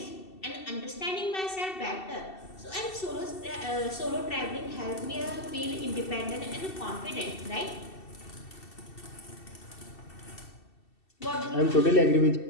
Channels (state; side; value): late; right; 2.7 ms